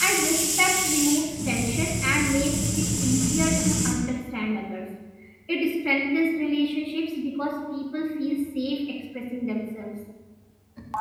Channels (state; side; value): identical; both; correlation 1.00